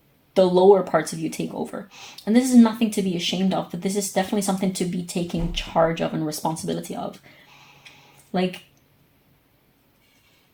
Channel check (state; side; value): identical; both; correlation 1.00